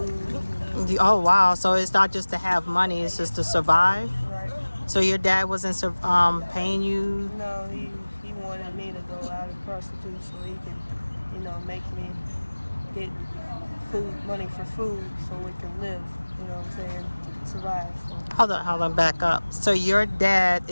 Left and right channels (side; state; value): both; inverted; correlation -1.00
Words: Oh, wow. So it's not just to have money, it's just to survive? Right. So your dad wasn't paying you? No, he wanted me to go out and prostitute so he can, make me get money for food so we can live, you know what I'm saying, survive. So. Hold on, back up. So your dad